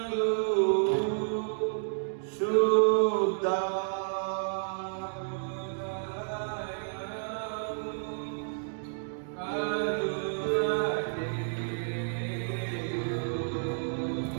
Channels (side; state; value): left; silent; digital silence